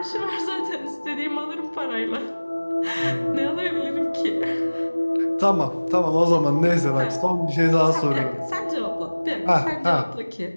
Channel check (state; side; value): inverted; both; correlation -1.00